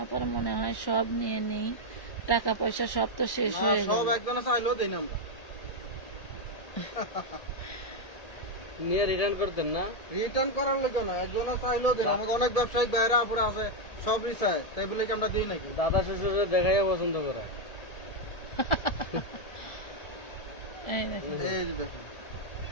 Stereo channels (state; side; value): late; right; 1.8 ms